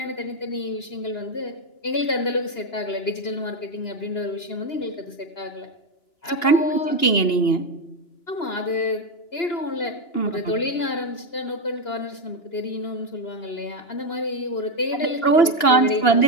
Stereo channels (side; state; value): right; late; 2.9 ms